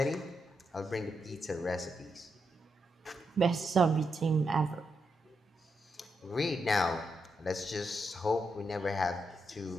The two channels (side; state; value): both; normal; correlation 0.83